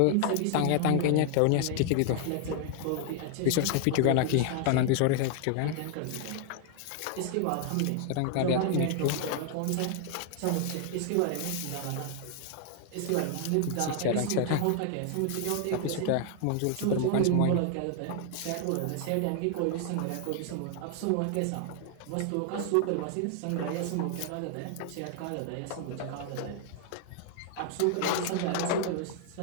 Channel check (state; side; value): different; both; correlation 0.00